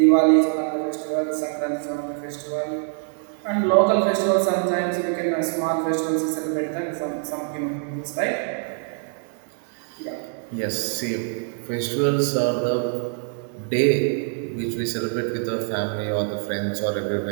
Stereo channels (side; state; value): left; silent; 56 dB below the other